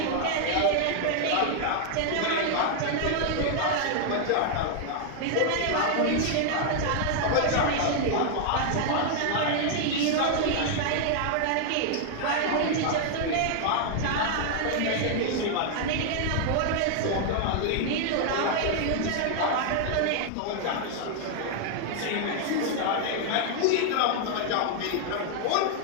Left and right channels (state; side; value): different; both; correlation 0.00